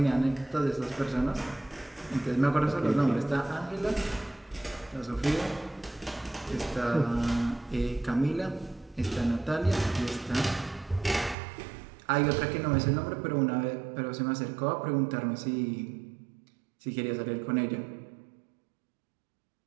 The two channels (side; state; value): left; drops out; at 11.4 s